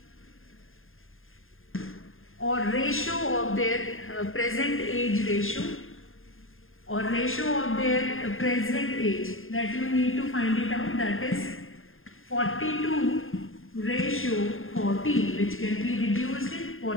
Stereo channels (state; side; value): late; right; 0.60 ms